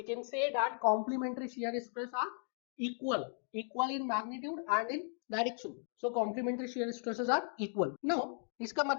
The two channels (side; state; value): right; silent; 53 dB below the other